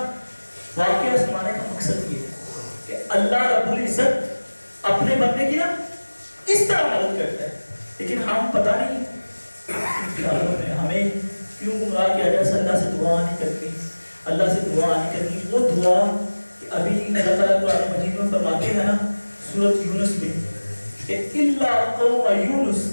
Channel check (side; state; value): both; inverted; correlation -1.00